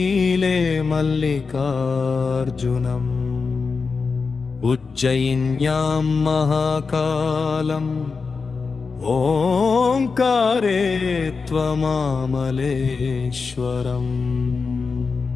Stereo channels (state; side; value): quieter; right; 4.8 dB